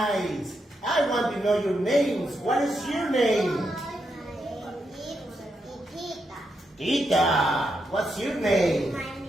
I want to know your names. What is your name? My name is Tita. Tita. What's your name? My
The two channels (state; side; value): normal; both; correlation 0.82